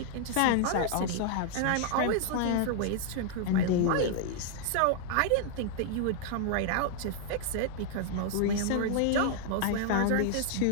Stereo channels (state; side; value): different; both; correlation 0.00